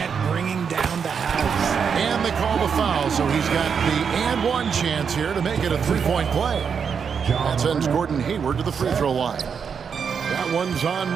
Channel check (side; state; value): left; quieter; 6.6 dB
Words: bringing down the house. And they call the foul, so he's got the and one chance here to make it a 3-point play. That sends Gordon Hayward to the free throw line. That one's on